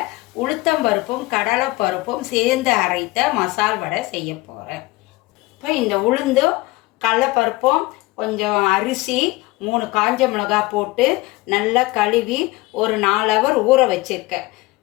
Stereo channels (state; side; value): quieter; right; 21.2 dB